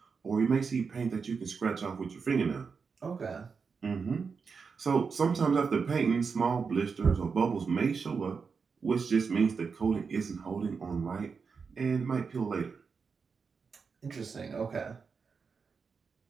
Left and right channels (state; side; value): quieter; left; 5.4 dB